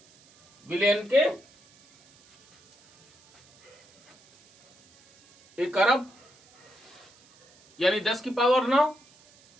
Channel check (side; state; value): right; noise; hiss, 30 dB below the sound